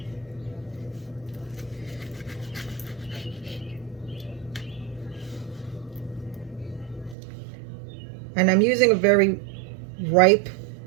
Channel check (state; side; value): drops out; left; at 7.2 s